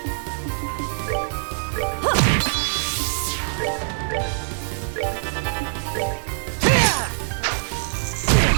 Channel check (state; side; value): silent; left; 62 dB below the other